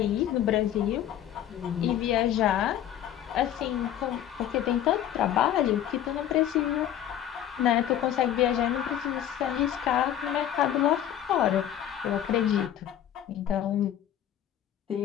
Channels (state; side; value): quieter; right; 11.0 dB